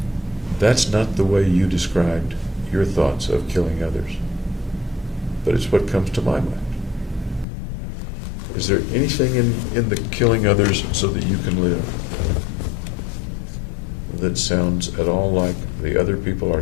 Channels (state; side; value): drops out; right; at 7.5 s